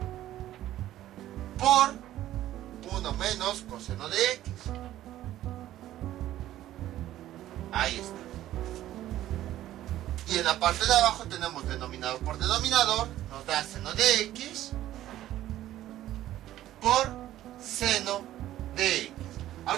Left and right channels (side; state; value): left; quieter; 13.6 dB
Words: por 1 menos coseno de x. Ahí está. Y en la parte de abajo tenemos denominador por denominador, nos da seno de x por seno de x.